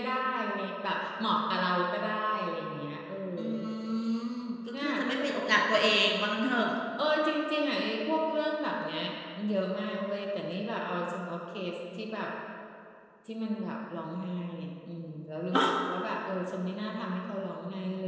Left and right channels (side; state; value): both; identical; correlation 1.00